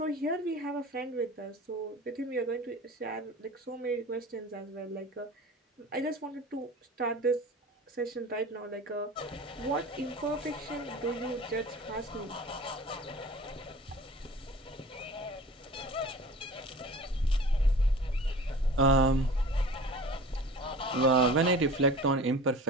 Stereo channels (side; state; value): both; normal; correlation 0.40